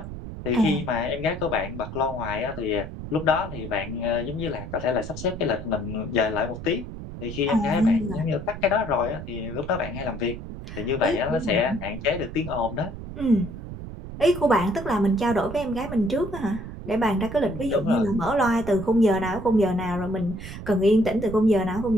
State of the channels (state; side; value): noise; right; rumble, 10 dB below the sound